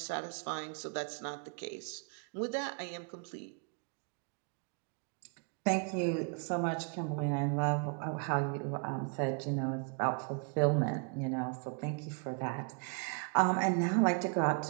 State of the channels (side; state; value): left; quieter; 38.1 dB